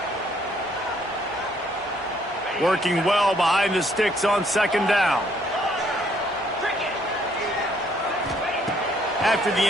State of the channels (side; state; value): both; normal; correlation 0.66